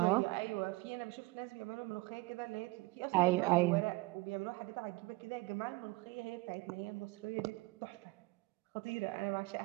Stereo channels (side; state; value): left; quieter; 22.9 dB